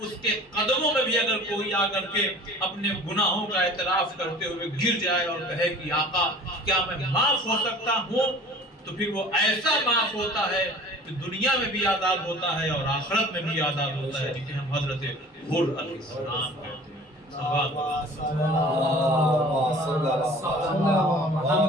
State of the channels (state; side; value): normal; both; correlation 0.45